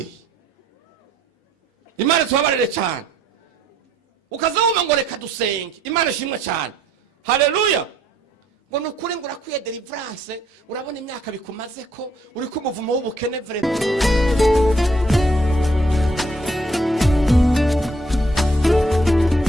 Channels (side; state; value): both; normal; correlation 0.66